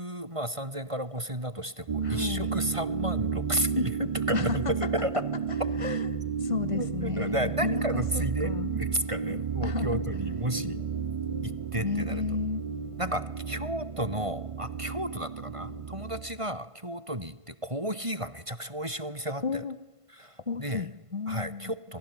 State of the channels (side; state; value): left; late; 1.5 ms